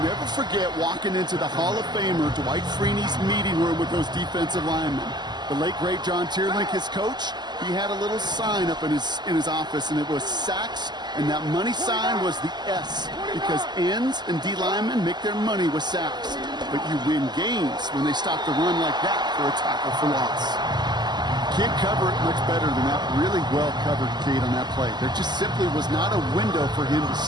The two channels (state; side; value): late; left; 0.21 ms